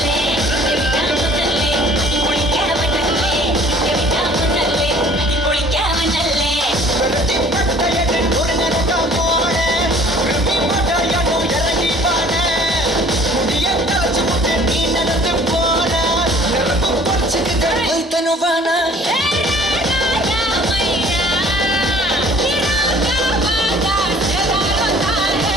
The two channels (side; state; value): both; normal; correlation 0.52